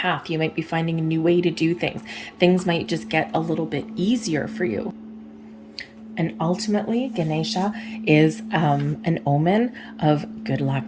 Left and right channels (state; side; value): identical; both; correlation 1.00